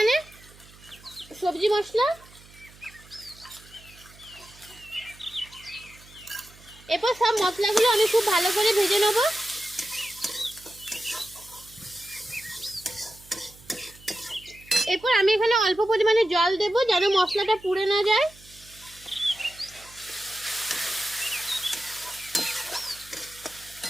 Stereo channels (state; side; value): noise; right; hum, 23 dB below the sound